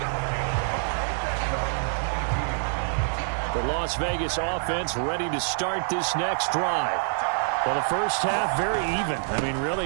The Las Vegas offense ready to start this next drive. Well, the first half, very even. I mean,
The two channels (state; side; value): silent; left; digital silence